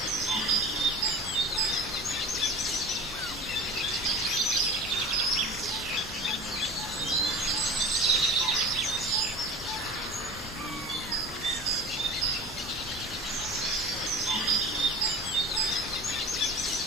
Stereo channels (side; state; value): both; normal; correlation 0.36